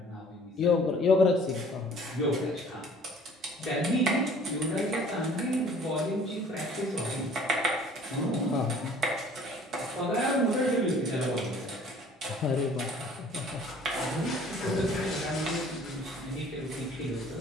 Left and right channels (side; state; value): both; normal; correlation 0.52